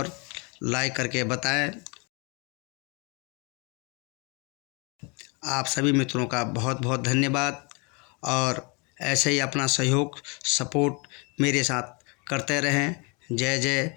लाइक करके बताएं। आप सभी मित्रों का बहुत बहुत धन्यवाद और ऐसे ही अपना सहयोग सपोर्ट मेरे साथ करते रहें। जय जय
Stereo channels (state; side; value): quieter; right; 31.3 dB